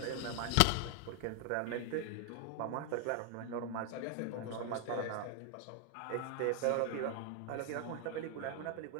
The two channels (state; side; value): different; both; correlation 0.00